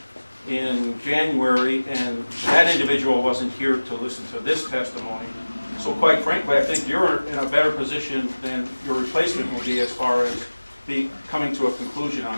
in January, and that individual wasn't here to listen to this testimony. So quite frankly, I think you're in a better position than your replacement will be as far as coming to a conclusion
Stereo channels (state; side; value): inverted; both; correlation -1.00